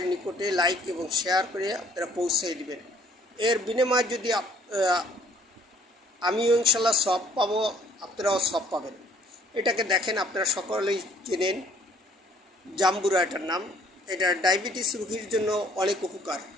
নিকটে লাইক এবং শেয়ার করে আপনারা পৌঁছে দিবেন। এর বিনিময়ে যদি আমিও ইনশাল্লাহ সব পাবো, আপনারাও সব পাবেন। এটাকে দেখেন, আপনারা সকলেই চেনেন, জাম্বুরা এটার নাম। এটা ডায়াবেটিস রোগীর জন্য অনেক উপকার,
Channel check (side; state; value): both; normal; correlation 0.60